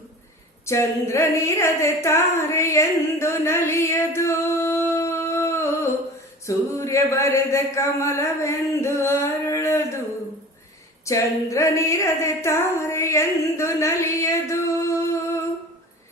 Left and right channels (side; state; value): both; normal; correlation 0.38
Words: ಚಂದ್ರನಿರದೆ ತಾರೆ ಎಂದು ನಲಿಯದು. ಸೂರ್ಯ ಬರೆದ ಕಮಲವೆಂದು ಅರಳದು, ಚಂದ್ರನಿರದೆ ತಾರೆ ಎಂದು ನಲಿಯದು.